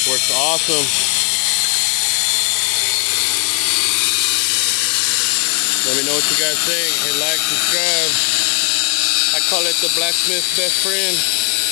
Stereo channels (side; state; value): right; quieter; 30.7 dB